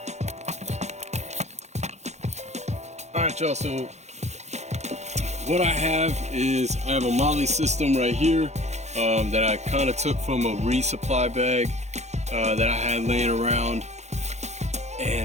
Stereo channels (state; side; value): late; left; 0.33 ms